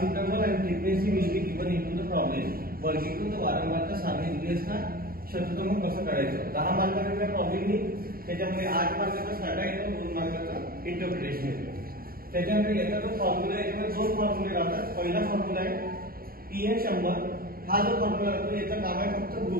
interval and frequency will be given into the problem. वर्गीकृत वारंवारता सारणी दिली असता शतक्रम कसं काढायचं. 10 मार्काचा प्रॉब्लेम येईल, त्याच्यामध्ये 8 मार्काचा स्टार्ट येतो, 2 मार्काचा इंटरप्रिटेशन येतो. त्याच्यानंतर याचा जो फॉर्म्युला आहे त्यामध्ये 2 फॉर्म्युले राहतात. पहिला फॉर्म्युला आहे पीएन 100. हा जो फॉर्म्युला असतो याचं काम आहे फक्त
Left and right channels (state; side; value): late; left; 0.43 ms